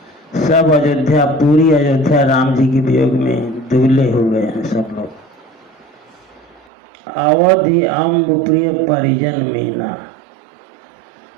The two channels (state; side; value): drops out; left; at 6.6 s